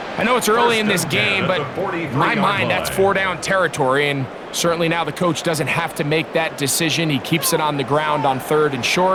I know it's early in this game, but in my mind, that's 4-down territory, and certainly now the coach doesn't have to make that decision. He keeps it on the ground on 3rd and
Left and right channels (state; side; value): identical; both; correlation 1.00